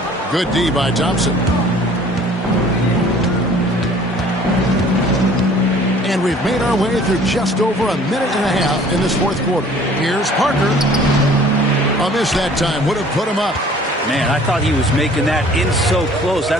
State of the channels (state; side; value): normal; both; correlation 0.52